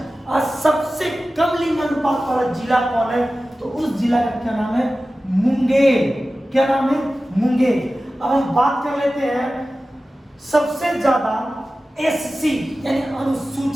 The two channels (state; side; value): normal; both; correlation 0.95